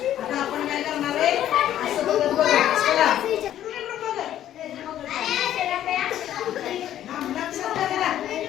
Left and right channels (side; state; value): right; quieter; 11.7 dB